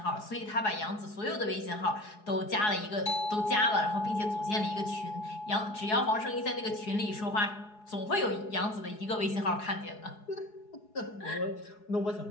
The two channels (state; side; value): late; right; 4.8 ms